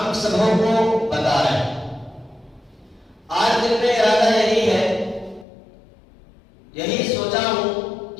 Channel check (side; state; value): right; drops out; at 5.5 s